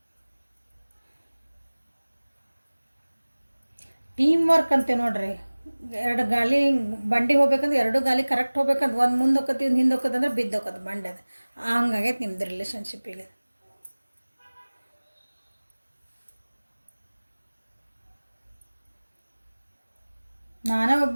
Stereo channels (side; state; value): both; inverted; correlation -1.00